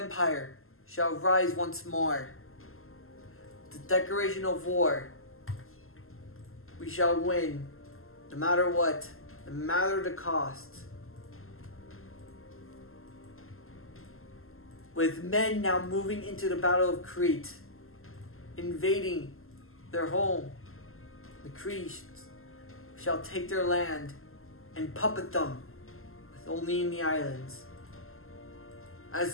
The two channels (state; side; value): late; right; 0.62 ms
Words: shall rise once more. The declaration of war, we shall win, no matter what, no matter the cost. With men now moving into the Battle of Crete, invading their home, the Cretes shall take their land and puppet them, with only in the islands.